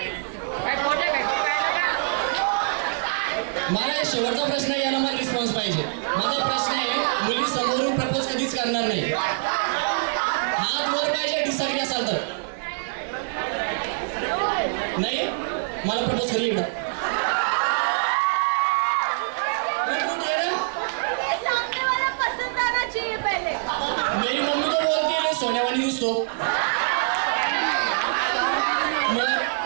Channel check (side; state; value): left; silent; 62 dB below the other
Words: मला शेवटचा प्रश्न आहे, याला मला रिस्पॉन्स पाहिजे। माझा प्रश्न आहे, मुली समोरून प्रपोज कधीच करणार नाही। हात वर पाहिजे डिसएग्री असाल तर। नाही मला प्रपोज करी इकडं मेरी मम्मी तो बोलती है सोनेवानी दिसतो।